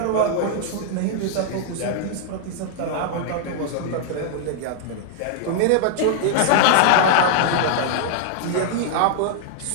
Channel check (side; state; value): both; different; correlation -0.01